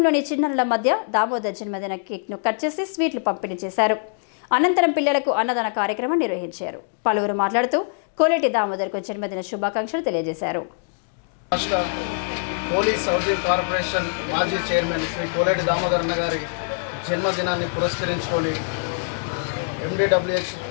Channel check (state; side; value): silent; right; digital silence